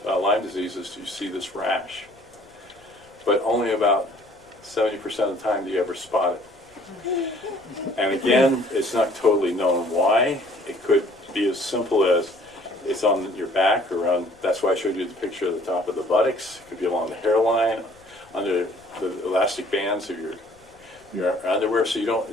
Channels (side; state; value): left; noise; rumble, 29 dB below the sound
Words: Lyme disease is you see this rash. But only about 70% of the time do you ever spot it. And again, it's not totally known why. It could be as simple as it's on your back or on, that's why I showed you the picture of the top of the buttocks. It could be along the hairline, under the elastic bands of your underwear, so